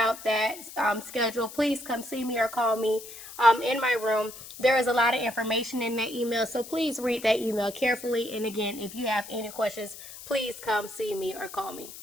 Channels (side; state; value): left; noise; hiss, 14 dB below the sound